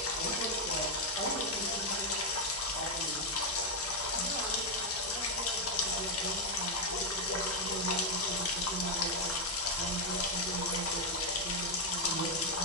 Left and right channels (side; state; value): both; normal; correlation 0.02